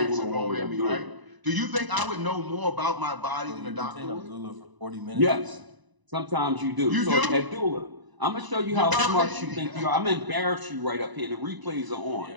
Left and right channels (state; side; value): late; left; 1.0 ms